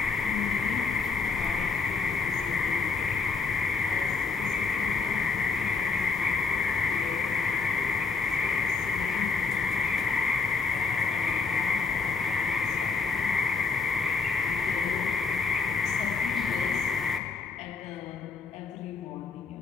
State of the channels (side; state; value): right; quieter; 4.7 dB